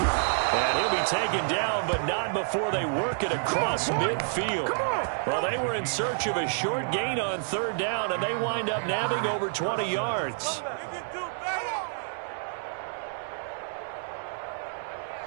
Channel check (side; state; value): left; silent; 58 dB below the other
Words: he'll be taken down, but not before they work it across midfield. Well, they were in search of a short gain on 3rd down, and they wind up nabbing over 20 yards.